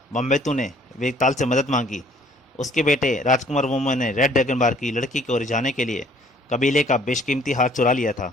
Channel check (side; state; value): both; normal; correlation 0.58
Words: बम्बेतु ने वेताल से मदद मांगी। उसके बेटे राजकुमार वोमो ने रेड ड्रैगन बार की लड़की को रिझाने के लिए कबीले का बेशकीमती हार चुरा लिया था,